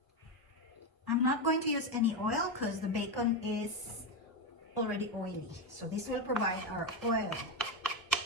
I'm not going to use any oil because the bacon is already oily. So this will provide our oil.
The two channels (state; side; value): normal; both; correlation 0.11